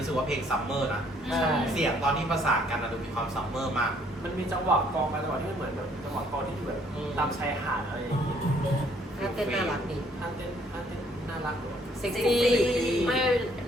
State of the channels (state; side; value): normal; both; correlation 0.64